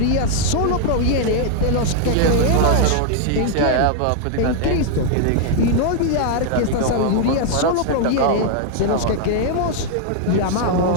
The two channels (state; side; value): different; both; correlation 0.00